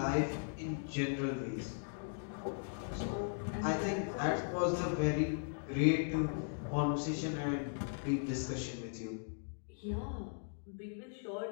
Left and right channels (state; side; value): silent; right; digital silence